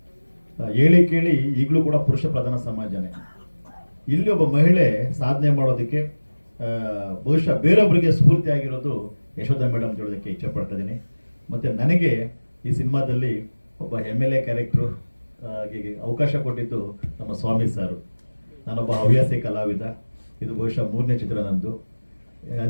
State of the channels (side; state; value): both; inverted; correlation -1.00